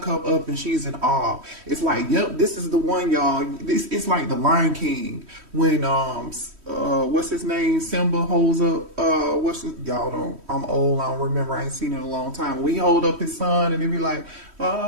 up and she's in awe. It's like, yep, this is the one, y'all. It's like the Lion King when what's his name? Simba holds up y'all don't, I'm old, I don't remember, I ain't seen it in a long time. We hold up his son and he be like,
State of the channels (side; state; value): left; late; 3.1 ms